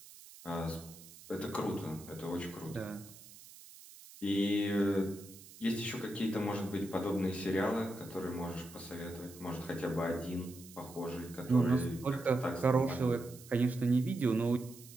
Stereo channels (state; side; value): noise; right; hiss, 19 dB below the sound